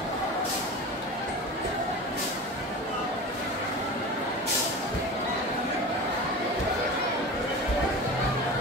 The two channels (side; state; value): both; normal; correlation 0.31